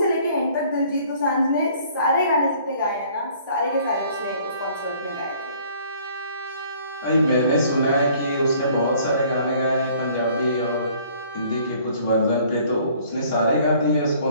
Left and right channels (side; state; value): both; inverted; correlation -0.57